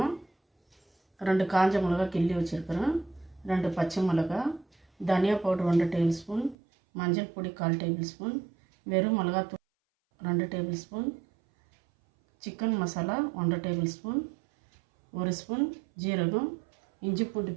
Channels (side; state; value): left; drops out; at 6.6 s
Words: 2 காஞ்ச மிளகா கிள்ளி வச்சுருக்கிறேன், 2 பச்சை மிளகா, தனியா பவுடர் 1 டேபிள் ஸ்பூன், மஞ்சள் பொடி 1/4 டேபிள் ஸ்பூன், வெறும் மிளகாத்தூள் 2 table spoon, chicken masala 1 table spoon, 1 spoon ஜீரகம், இஞ்சி பூண்டு